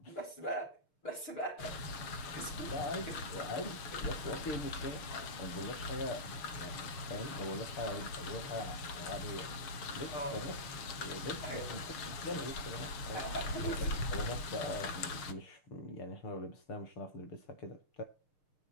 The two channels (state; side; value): late; right; 6.5 ms